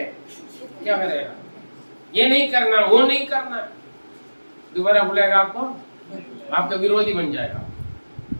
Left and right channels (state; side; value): inverted; both; correlation -1.00